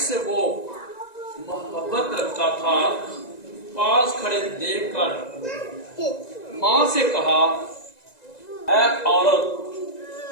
वो मोहब्बत रखता था पास खड़े देखकर माँ से कहा, ऐ औरत,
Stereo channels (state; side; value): late; right; 1.9 ms